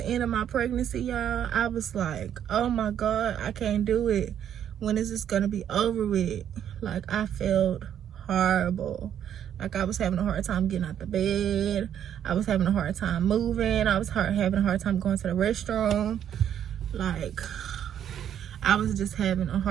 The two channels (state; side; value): quieter; left; 9.7 dB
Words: of my pregnancy, y'all, I was like, oh my God, I can't do it. When is this gonna be over with? Like, I felt horrible. Like, I was having a hard time getting out the bed. I was having a hard time moving. I was having a hard time going to the restroom. Like, I was just having a